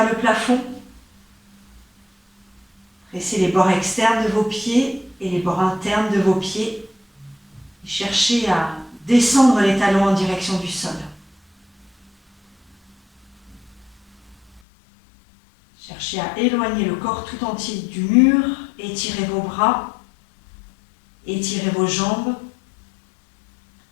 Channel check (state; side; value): drops out; right; at 14.6 s